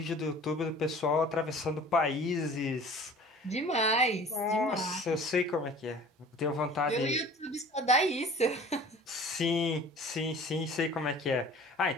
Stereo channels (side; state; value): both; normal; correlation 0.45